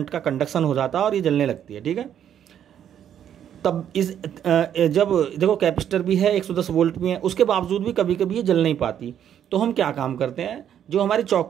का कंडक्शन हो जाता है और ये जलने लगती है, ठीक है। तब इस जब देखो कैपेसिटर भी है, 110 वोल्ट भी है, उसके बावजूद भी कभी कभी ये जल नहीं पाती। तो हम क्या काम करते हैं, जो हमारी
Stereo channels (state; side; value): quieter; left; 9.7 dB